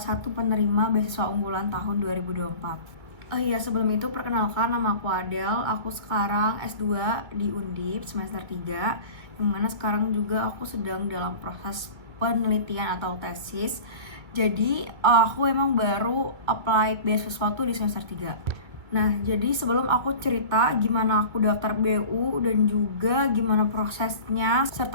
penerima beasiswa unggulan tahun 2024. Iya, sebelum itu perkenalkan, nama aku Adel. Aku sekarang S2 di Undip semester 3, yang mana sekarang juga aku sedang dalam proses penelitian atau tesis. Jadi aku emang baru apply beasiswa tuh di semester 3. Nah, jadi sebelum aku cerita gimana aku daftar BU dan juga gimana prosesnya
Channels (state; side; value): late; left; 2.4 ms